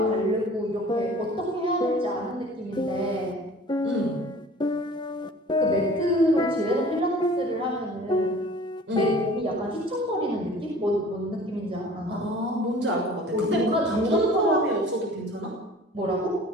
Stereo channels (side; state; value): both; normal; correlation 0.46